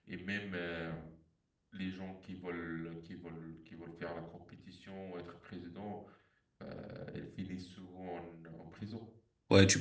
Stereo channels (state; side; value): identical; both; correlation 1.00